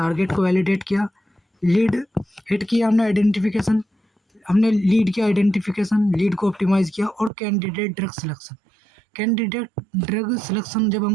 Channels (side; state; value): left; drops out; at 7.3 s